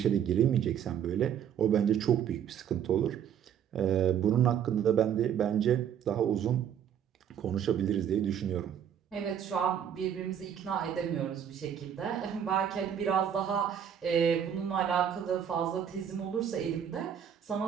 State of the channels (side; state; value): left; quieter; 8.9 dB